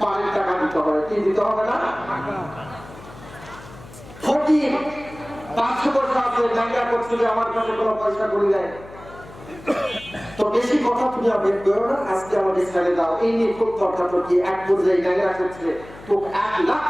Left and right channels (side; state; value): left; noise; hum, 18 dB below the sound